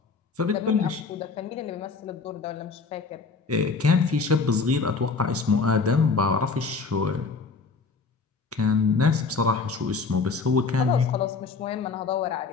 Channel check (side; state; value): right; quieter; 4.5 dB